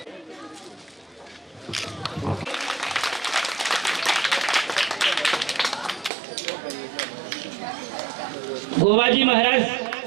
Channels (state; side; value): drops out; left; at 6.1 s